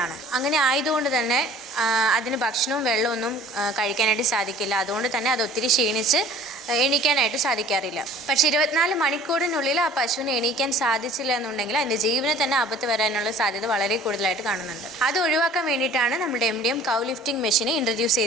അങ്ങനെ ആയതുകൊണ്ട് തന്നെ അതിന് ഭക്ഷണവും വെള്ളമൊന്നും കഴിക്കാനായിട്ട് സാധിക്കില്ല. അതുകൊണ്ട് തന്നെ അത് ഒത്തിരി ക്ഷീണിച്ച് എണീക്കാനായിട്ട് സാധിക്കാറില്ല. പക്ഷേ 24 മണിക്കൂറിനുള്ളിൽ ആ പശുവിനെ എണീക്കാൻ സാധിച്ചില്ല എന്നുണ്ടെങ്കിൽ അതിൻ്റെ ജീവന് തന്നെ ആപത്ത് വരാനുള്ള സാധ്യത വളരെ കൂടുതലായിട്ട് കാണുന്നുണ്ട്. അത് ഒഴിവാക്കാൻ വേണ്ടിയിട്ടാണ് നമ്മുടെ MDM കൗ ലിഫ്റ്റിംഗ് മെഷീനെ ഇൻട്രൊഡ്യൂസ്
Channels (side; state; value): both; normal; correlation 0.49